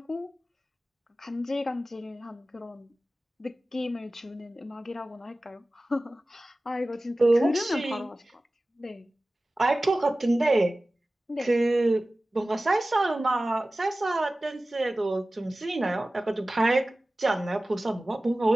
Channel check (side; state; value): both; normal; correlation 0.97